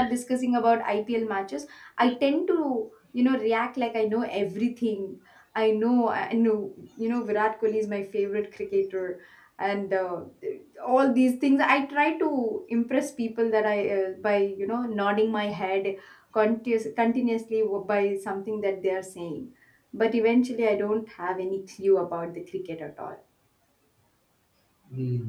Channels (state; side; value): identical; both; correlation 1.00